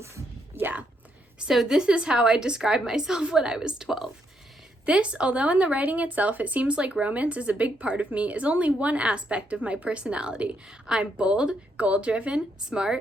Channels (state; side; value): normal; both; correlation 0.76